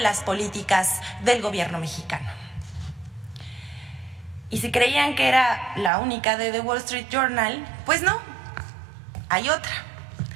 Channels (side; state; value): left; drops out; at 5.9 s